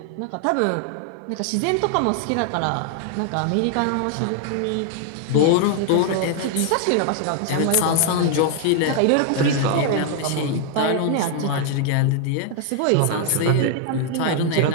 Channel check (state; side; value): different; both; correlation 0.00